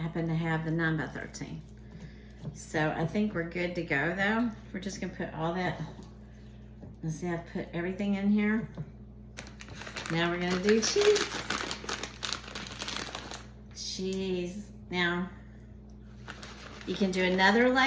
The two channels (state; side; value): identical; both; correlation 1.00